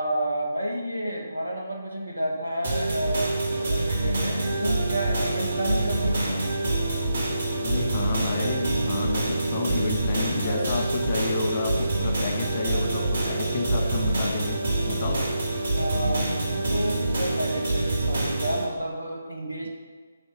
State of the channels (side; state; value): both; inverted; correlation -0.82